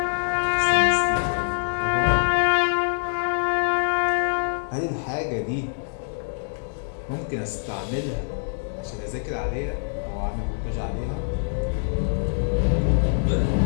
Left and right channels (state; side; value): silent; right; digital silence